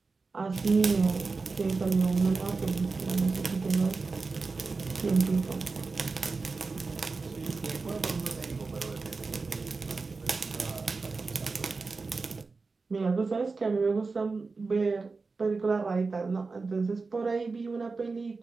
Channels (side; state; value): left; quieter; 4.1 dB